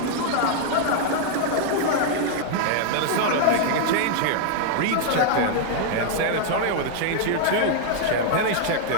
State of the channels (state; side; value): different; both; correlation 0.00